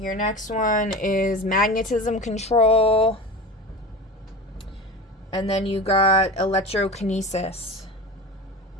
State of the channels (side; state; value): both; normal; correlation 0.30